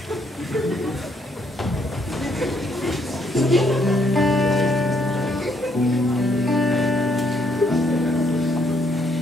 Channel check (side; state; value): both; normal; correlation 0.71